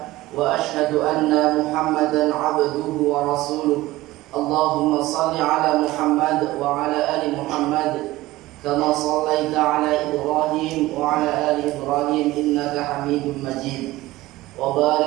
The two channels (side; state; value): left; quieter; 17.9 dB